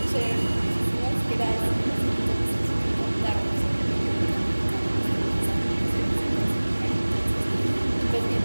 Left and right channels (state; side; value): inverted; both; correlation -1.00